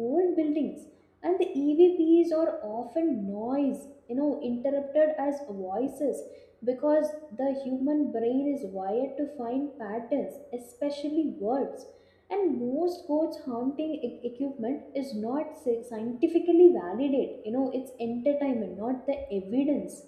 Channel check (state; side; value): identical; both; correlation 1.00